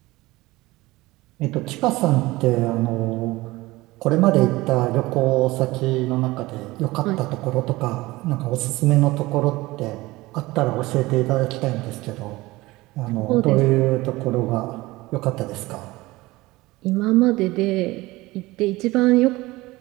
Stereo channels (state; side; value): quieter; left; 20.0 dB